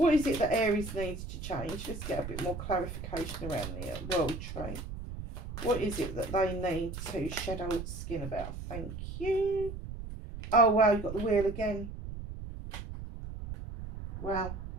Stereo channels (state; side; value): noise; right; rumble, 8 dB below the sound